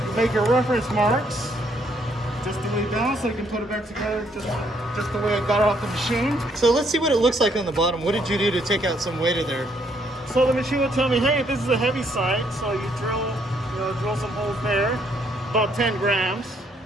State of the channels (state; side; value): normal; both; correlation 0.70